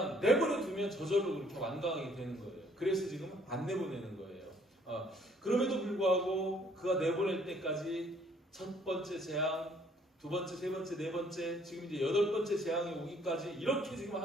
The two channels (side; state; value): both; normal; correlation 0.62